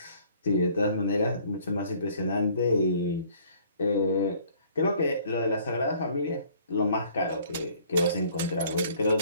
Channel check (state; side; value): inverted; both; correlation -0.57